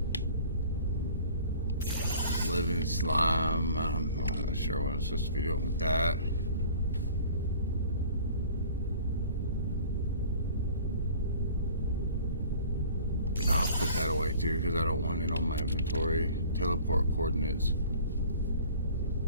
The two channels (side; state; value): both; inverted; correlation -0.48